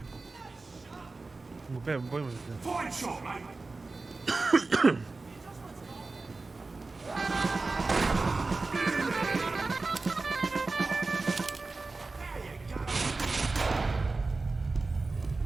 Voy Fine shot, mate.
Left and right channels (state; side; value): quieter; left; 3.6 dB